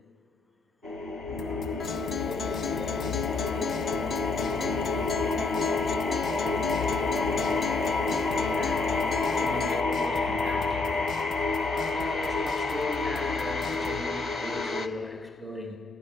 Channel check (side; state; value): right; quieter; 3.6 dB